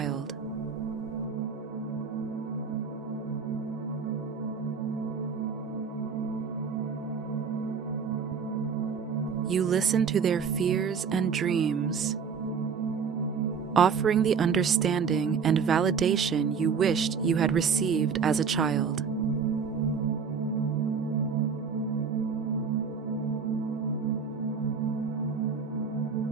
You listen to their fears and dreams, offering the understanding and validation you wished you had received as a child.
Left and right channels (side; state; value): left; quieter; 6.1 dB